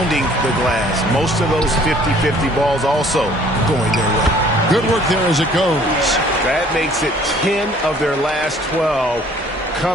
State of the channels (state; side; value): normal; both; correlation 0.56